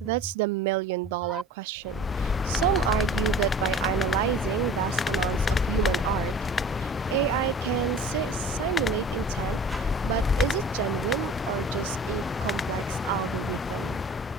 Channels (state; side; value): normal; both; correlation 0.42